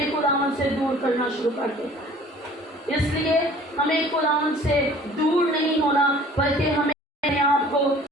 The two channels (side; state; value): both; normal; correlation 0.50